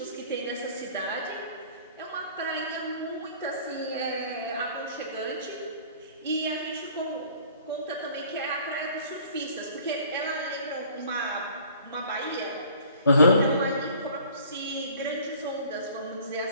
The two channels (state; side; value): inverted; both; correlation -0.51